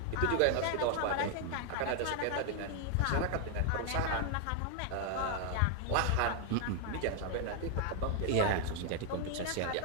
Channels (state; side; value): different; both; correlation 0.00